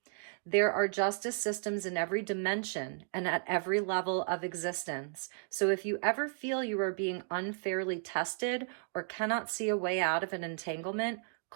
There are justice systems in every dimension and at every level of existence. So if you ever feel you are being unfairly tested or cannot see a way out of an entanglement,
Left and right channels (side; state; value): left; silent; digital silence